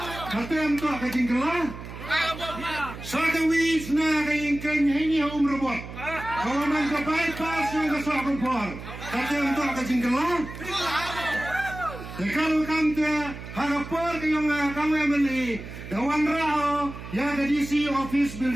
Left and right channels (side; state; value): right; noise; hum, 12 dB below the sound